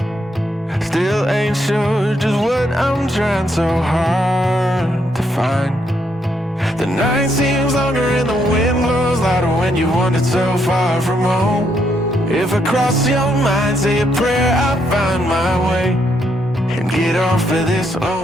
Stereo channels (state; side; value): normal; both; correlation 0.76